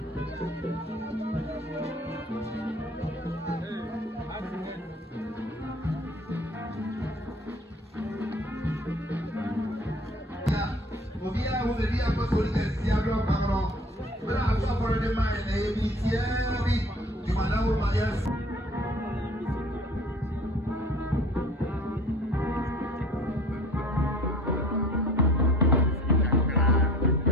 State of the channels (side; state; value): both; normal; correlation 0.47